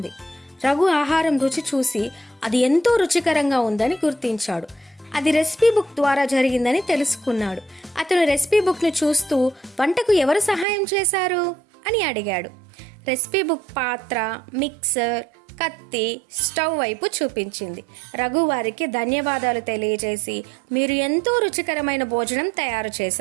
రఘు ఆహారం రుచి చూసి అది ఎంతో రుచికరంగా ఉందని గుర్తించాడు. అది రెసిపీ బుక్ ద్వారా జరిగిందని తెలుసుకున్నాడు. అతను రెసిపీ బుక్ను చూస్తూ, వంటకు ఎవరు సహాయం చేశారు అని అడిగాడు. రెసిపీ బుక్ పాత్ర, మిక్సర్, కత్తి, స్టవ్ వైపు చూపించింది. రఘు వారికి ధన్యవాదాలు తెలియజేసి, మీరు ఎంతో రుచికరమైన భోజనం తయారు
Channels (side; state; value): left; drops out; at 10.7 s